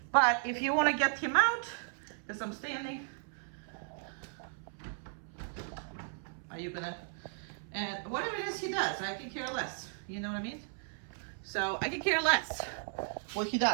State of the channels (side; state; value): left; silent; 54 dB below the other